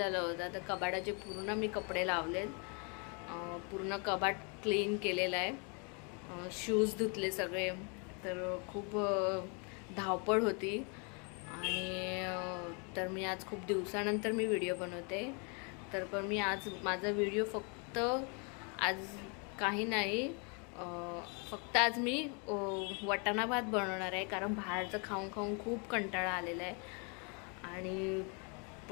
होतं, तर कबाडाचे पूर्ण मी कपडे लावलेत. पूर्ण कबाट क्लीन केलेलं आहे. शूज धुतले सगळे. तर खूप धावपळ होती. आणि तर मी आज खूप दिवसानंतर मी व्हिडिओ बनवते. पण मी आज माझा व्हिडिओ फक्त आज काही नाही, फक्त आज मी वाटाणा भात बनवणार आहे, कारण बाहेरचं खाऊन खाऊन खूप कंटाळा आलेला आहे. आणि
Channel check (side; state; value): right; quieter; 35.4 dB